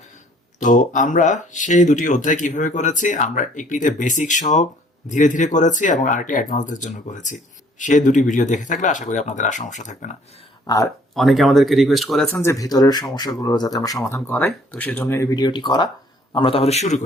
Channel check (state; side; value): normal; both; correlation 0.59